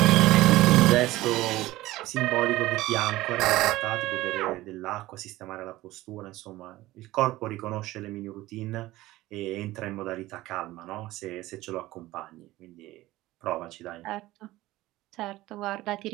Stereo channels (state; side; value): quieter; left; 17.4 dB